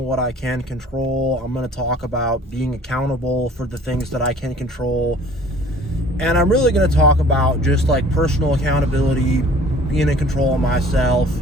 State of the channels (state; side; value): normal; both; correlation 0.51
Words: I can control. I'm going to talk about being accountable for the things that I can control, and I'm really going to talk about just like personal accountability, being in control of myself,